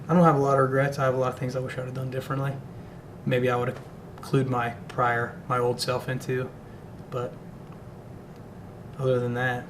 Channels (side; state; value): both; identical; correlation 1.00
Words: have a lot of regrets. I have a lot of things I wish I would have done differently. Maybe I would have clued my old self into, but other than that,